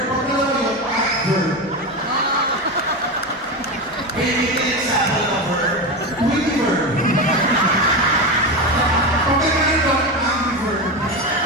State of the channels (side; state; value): both; normal; correlation 0.18